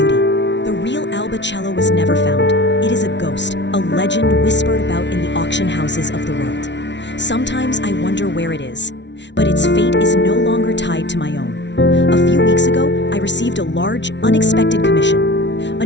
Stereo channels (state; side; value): late; right; 0.51 ms